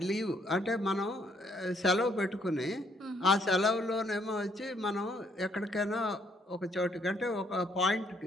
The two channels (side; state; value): both; normal; correlation 0.69